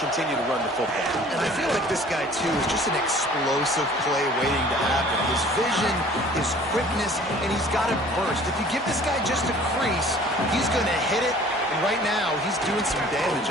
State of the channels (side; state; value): both; normal; correlation 0.50